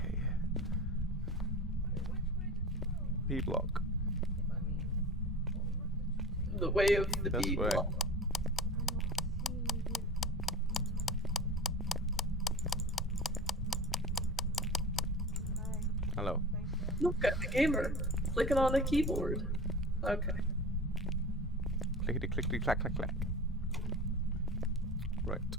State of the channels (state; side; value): normal; both; correlation 0.33